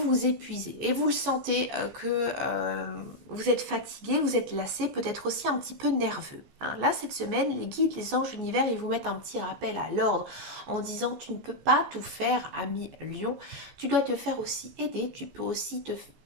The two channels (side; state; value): left; late; 14 ms